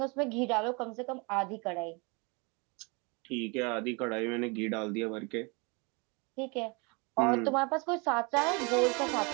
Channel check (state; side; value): quieter; left; 29.9 dB